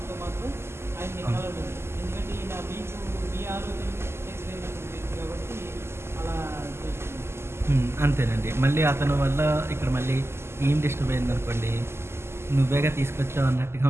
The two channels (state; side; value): late; left; 0.12 ms